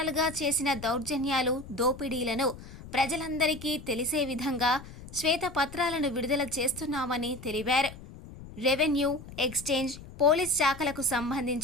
చేసిన దౌర్జన్యాలు, దోపిడీలను ప్రజలందరికీ తెలిసే విధంగా శ్వేతపత్రాలను విడుదల చేస్తున్నామని తెలిపారు. రెవెన్యూ, ఎక్స్చేంజ్, పోలీస్ శాఖలకు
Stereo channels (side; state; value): left; noise; rumble, 15 dB below the sound